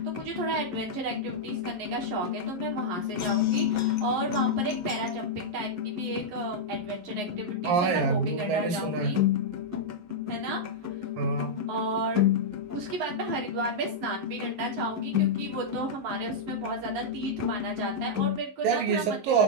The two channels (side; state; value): left; late; 11 ms